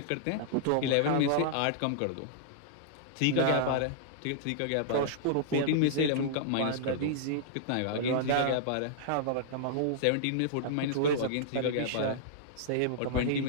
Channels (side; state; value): both; different; correlation -0.02